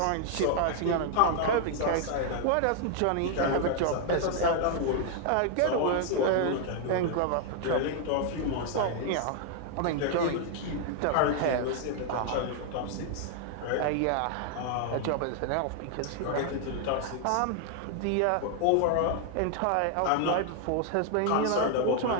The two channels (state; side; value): different; both; correlation 0.00